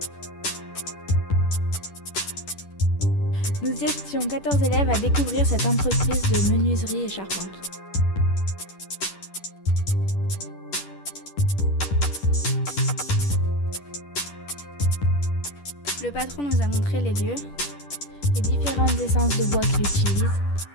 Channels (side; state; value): right; late; 10 ms